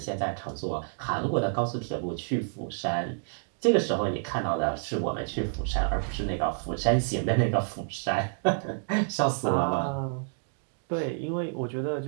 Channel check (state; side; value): silent; left; 59 dB below the other